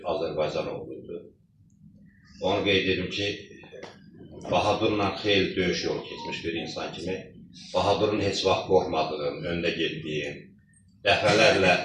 Azərbaycan oğluydu. Onu qeyd edim ki, Bahadurla xeyli döyüş yolu keçmiş bir insan kimi Bahadurun heç vaxt qorxmadığım, öndə getdiyim, dəfələrlə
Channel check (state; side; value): identical; both; correlation 1.00